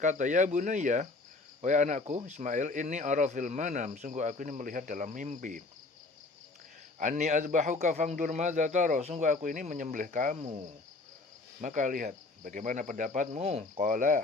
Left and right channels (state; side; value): quieter; right; 3.4 dB